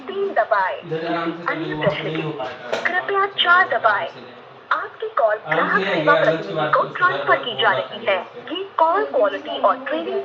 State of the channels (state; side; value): identical; both; correlation 1.00